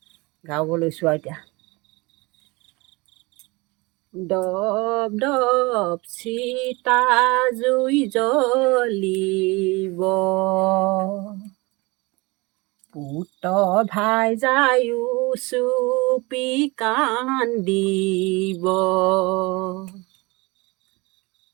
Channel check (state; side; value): quieter; left; 25.0 dB